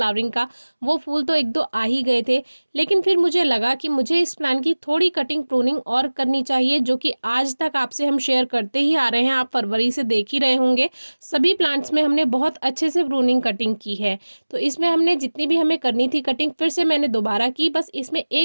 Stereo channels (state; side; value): inverted; both; correlation -1.00